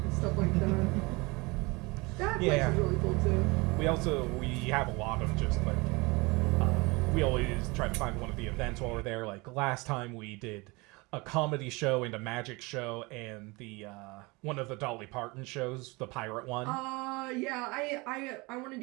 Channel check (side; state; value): left; quieter; 25.5 dB